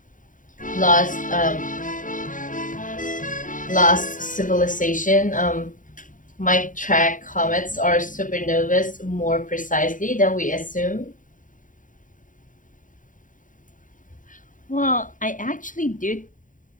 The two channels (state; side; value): late; right; 0.38 ms